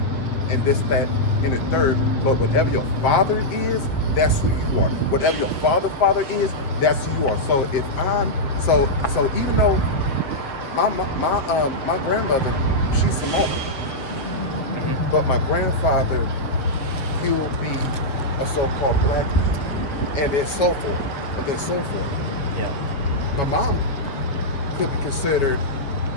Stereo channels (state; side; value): late; right; 7.4 ms